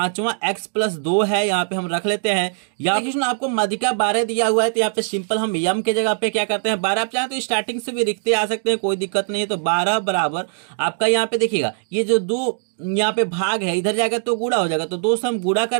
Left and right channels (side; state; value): left; silent; digital silence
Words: x+2 है, यहाँ पे हम रख लेते हैं। यहाँ पे आपको मध्यिका 12 दिया हुआ है तो यहाँ पे सिंपल हम m के जगह पे क्या करते हैं 12, आप चाहें तो स्टार्टिंग से भी लिखते आ सकते हैं, कोई दिक्कत नहीं है। तो 12 बराबर आपका यहाँ पे देखिएगा ये जो 2 यहाँ पे भाग है इधर जाएगा तो गुणा हो जाएगा, तो 2 से हम गुणा कर